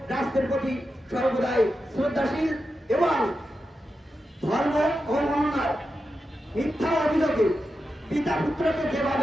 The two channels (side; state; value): both; normal; correlation 0.89